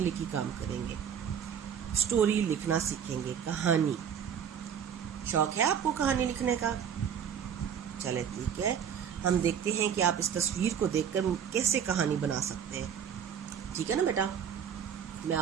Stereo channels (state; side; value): quieter; left; 8.2 dB